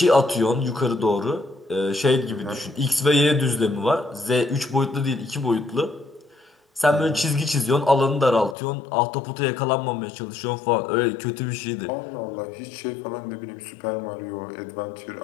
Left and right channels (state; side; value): drops out; right; at 8.6 s